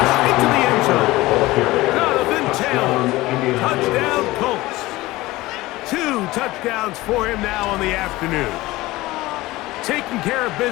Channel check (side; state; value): right; quieter; 19.0 dB